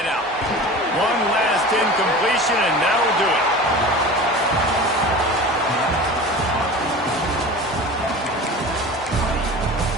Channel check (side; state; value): both; normal; correlation 0.35